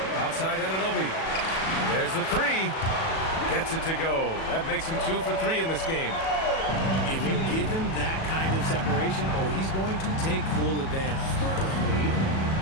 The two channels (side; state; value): right; late; 37 ms